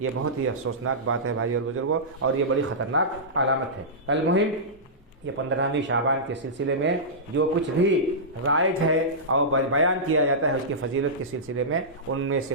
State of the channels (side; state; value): both; normal; correlation -0.15